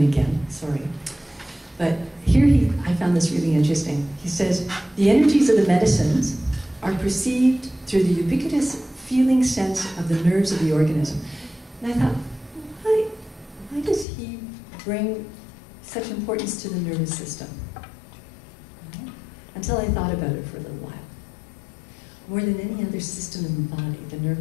again, sorry. But here I found this really interesting. He says, the energies of the medicines are perceived through the ubiquitous feeling sense of the nerves of the organism. And I thought, why does he bring such importance to the nervous system? Until I thought about it for a little while. More than any other system in the body, the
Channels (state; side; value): drops out; right; at 14.1 s